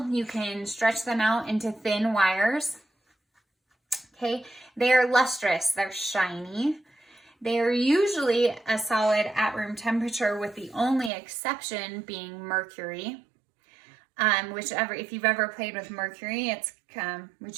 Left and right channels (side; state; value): left; drops out; at 11.1 s